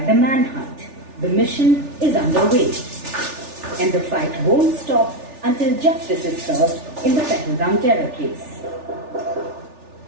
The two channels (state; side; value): late; left; 3.4 ms